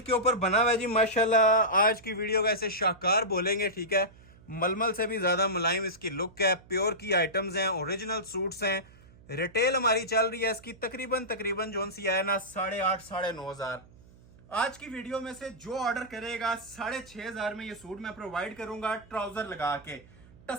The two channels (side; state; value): right; noise; hum, 24 dB below the sound